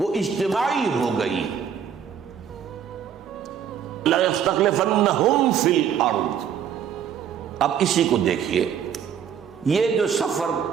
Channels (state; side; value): quieter; left; 8.3 dB